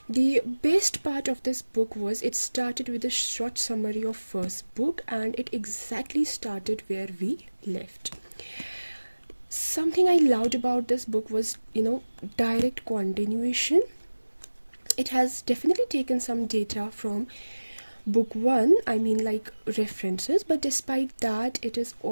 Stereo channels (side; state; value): both; inverted; correlation -1.00